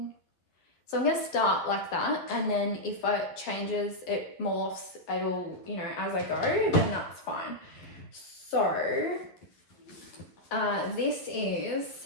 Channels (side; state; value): right; late; 11 ms